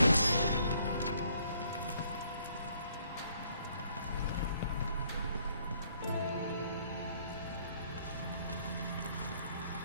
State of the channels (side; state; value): both; inverted; correlation -0.66